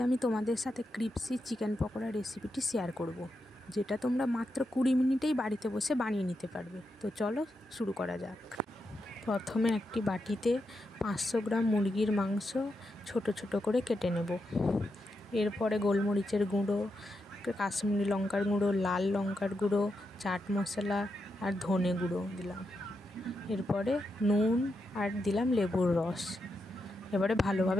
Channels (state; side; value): normal; both; correlation 0.85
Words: আমি তোমাদের সাথে ক্রিপসি চিকেন পকোড়া রেসিপিটি শেয়ার করব, যেটা তোমরা মাত্র 20 মিনিটেই বাড়িতে বসে বানিয়ে নিতে পারবে। তো চলো শুরু করা যাক। প্রথমে একটি বাটিতে 500 গ্রাম মুরগির মাংস ছোট ছোট করে কেটে নেব। এরপরে গোলমরিচের গুঁড়ো, কাশ্মীরি লঙ্কার গুঁড়ো, লাল লঙ্কার গুঁড়ো, চাট মশলা আর ধনে গুঁড়ো দিলাম। এরপরে নুন আর দিলাম লেবুর রস। এবারে